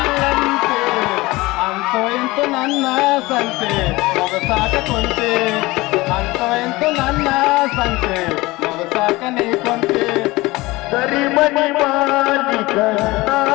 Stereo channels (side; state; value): right; quieter; 20.9 dB